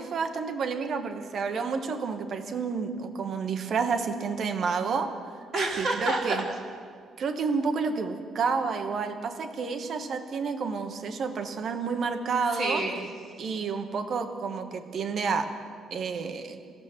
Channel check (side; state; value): left; quieter; 4.3 dB